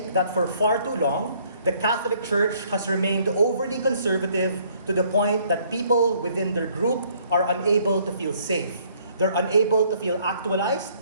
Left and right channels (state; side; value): inverted; both; correlation -0.63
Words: that for far too long, the Catholic Church has remained overly conservative to the point that people within their group are unable to feel safe. They're unable to feel actualized.